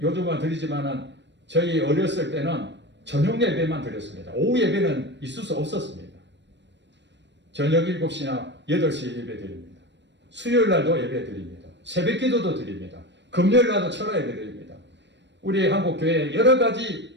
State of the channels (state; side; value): late; left; 0.52 ms